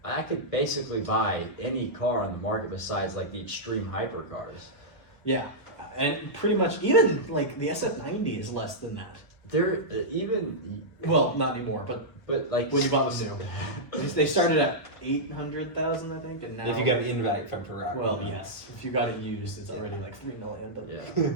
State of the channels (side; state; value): right; late; 1.0 ms